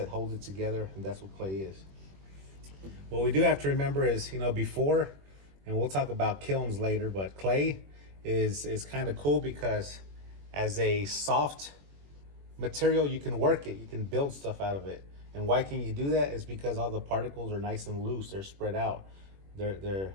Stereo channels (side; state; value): left; late; 21 ms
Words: hold it together, and that's what clay is. What we do have to remember is, before, and we'll talk about kilns later, but clay is kind of cool because as a soft material, you can work it, you can build stuff out of it. And why can you do that? Is because all the particles are nice and loose, they're spread out.